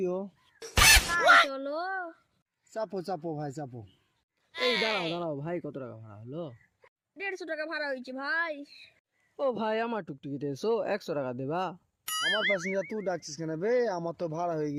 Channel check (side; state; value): both; identical; correlation 1.00